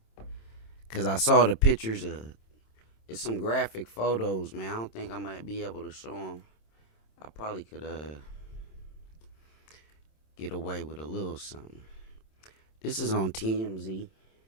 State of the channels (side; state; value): right; late; 27 ms